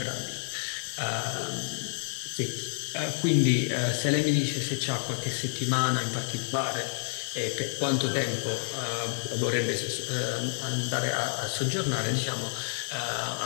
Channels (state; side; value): silent; right; digital silence